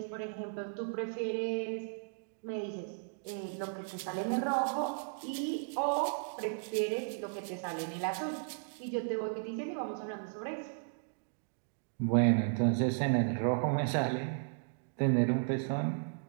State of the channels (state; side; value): silent; left; digital silence